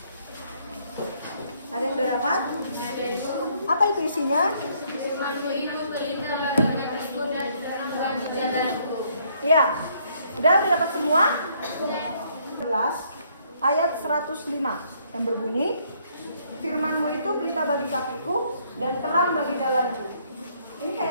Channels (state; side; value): inverted; both; correlation -0.67